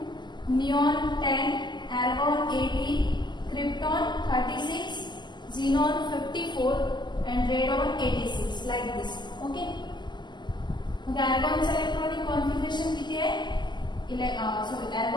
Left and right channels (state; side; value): late; right; 0.21 ms